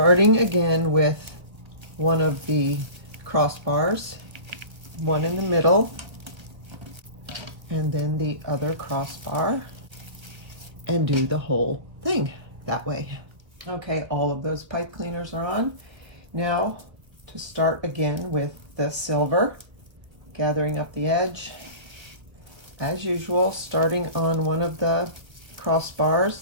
again with one of the crossbars, one in the middle, and then the other crossbar, and do the whole thing that way. Okay, all of those pipe cleaners are on. Now to start again with the silver, gathering up the edge as usual, starting on one of the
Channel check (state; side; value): late; left; 1.3 ms